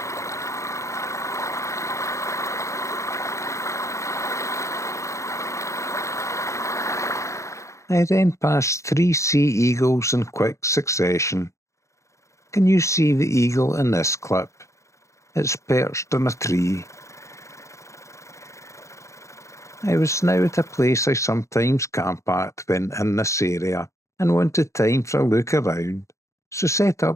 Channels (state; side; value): late; right; 0.14 ms